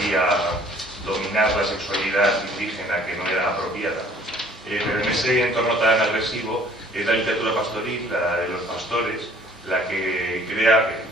a dominar la sexualidad indígena que no era apropiada. Pero en ese entorno tan agresivo es la literatura pastoril, la de los pastores, la que crea que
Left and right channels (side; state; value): both; normal; correlation 0.55